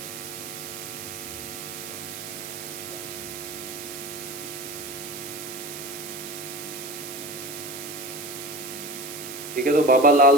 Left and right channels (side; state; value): right; noise; hiss, 9 dB below the sound